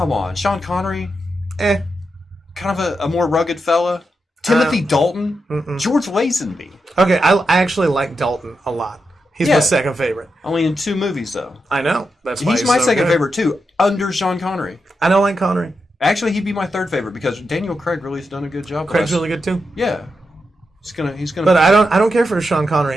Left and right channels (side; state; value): both; normal; correlation 0.86